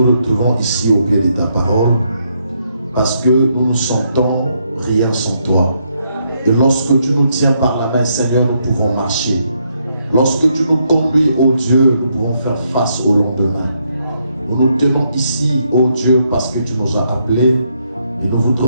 retrouvons ici au pied de ta parole parce que nous ne sentons rien sans toi. Et lorsque tu nous tiens par la main, Seigneur, nous pouvons marcher. Lorsque tu nous conduis, ô Dieu, nous pouvons faire face au lendemain. Nous nous tenons ici, ô Dieu, parce que tu nous as appelés et nous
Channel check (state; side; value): inverted; both; correlation -0.76